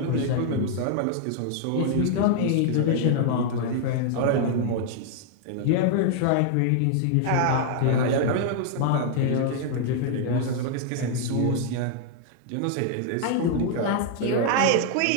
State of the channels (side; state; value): both; different; correlation 0.00